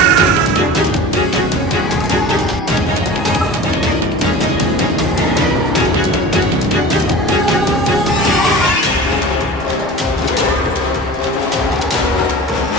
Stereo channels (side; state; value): both; normal; correlation 0.38